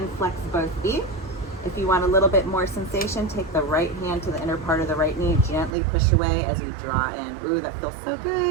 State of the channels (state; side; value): drops out; left; at 5.7 s